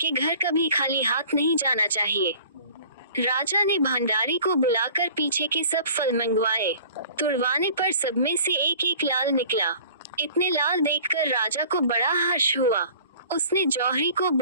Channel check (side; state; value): both; inverted; correlation -0.48